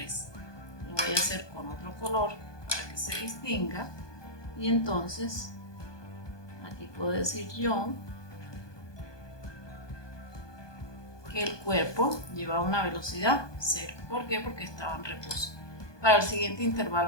Lo voy a hacer con otro color para que se distinga. Y entonces aquí puedo decir yo que el cuerpo llevaba una velocidad 0. ¿Por qué? Porque estaba en reposo. Para el siguiente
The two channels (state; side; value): late; right; 1.2 ms